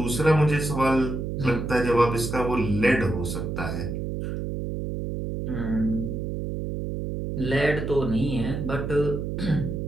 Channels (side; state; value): right; noise; hum, 4 dB below the sound